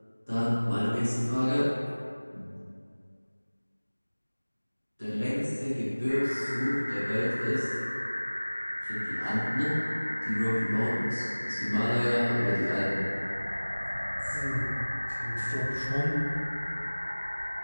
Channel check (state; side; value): inverted; both; correlation -1.00